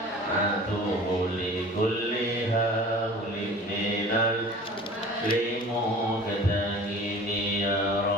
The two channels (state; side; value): normal; both; correlation 0.42